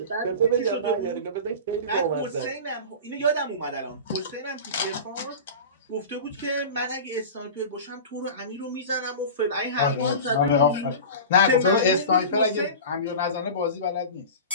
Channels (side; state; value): both; inverted; correlation -0.32